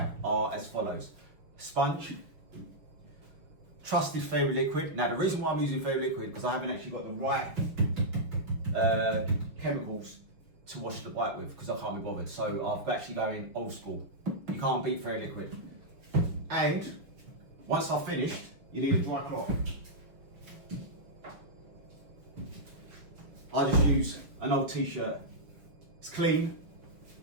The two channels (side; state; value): left; late; 6.1 ms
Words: are as follows. Sponge, trusted Fairy Liquid. Now the reason why I'm using Fairy Liquid because I haven't actually got the right chemicals to wash the bike with because I can't be bothered. So I've actually going old school. You can't beat Fairy Liquid. And once I've finished, you need a dry cloth. I just use an old t-shirt. It's clean,